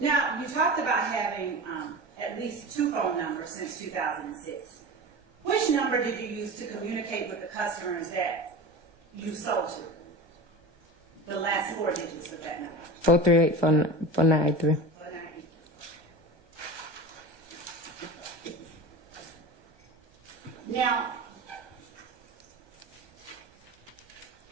you talked about having at least 2 phone numbers since 2006. Which number did you use to communicate with the customers that you sold to? The last 4 digits of that number. 438 4983. Now,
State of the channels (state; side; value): late; left; 1.2 ms